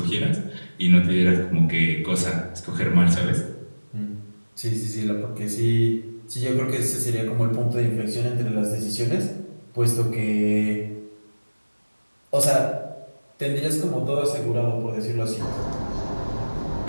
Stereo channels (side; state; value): both; inverted; correlation -1.00